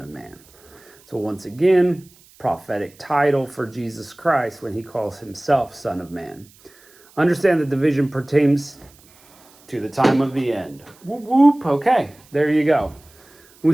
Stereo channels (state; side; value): noise; right; hiss, 28 dB below the sound